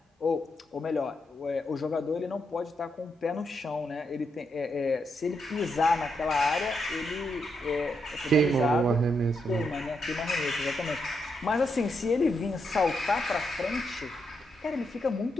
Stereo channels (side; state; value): both; normal; correlation 0.81